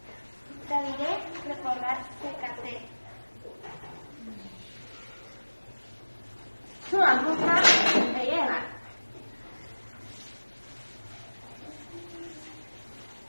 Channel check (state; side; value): inverted; both; correlation -1.00